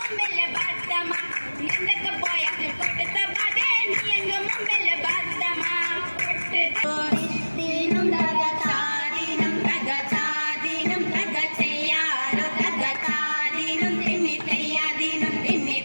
batama. Nandaka poyakku kodutha bade niyanga mummela batama. Dinum dagata dinum dagata dinum dagataya dagata dinum timitaya dinum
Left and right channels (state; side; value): inverted; both; correlation -1.00